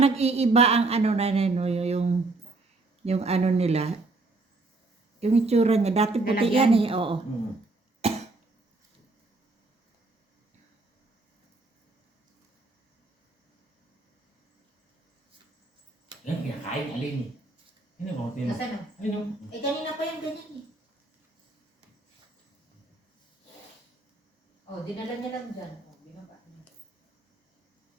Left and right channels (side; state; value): left; quieter; 3.4 dB